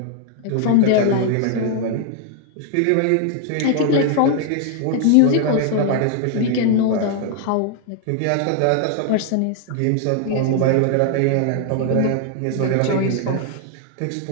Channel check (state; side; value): different; both; correlation 0.00